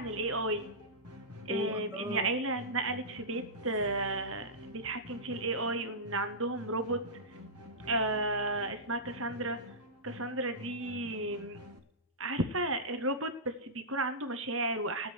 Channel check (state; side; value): normal; both; correlation -0.15